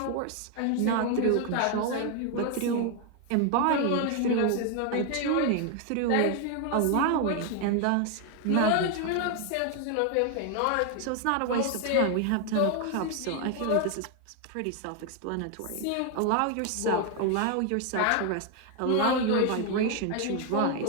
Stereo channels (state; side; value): different; both; correlation 0.01